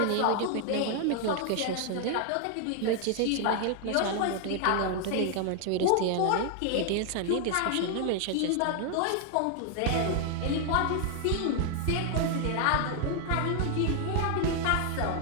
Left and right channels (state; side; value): different; both; correlation 0.00